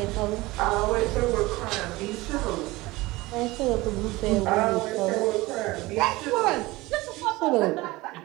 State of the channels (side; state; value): left; quieter; 20.6 dB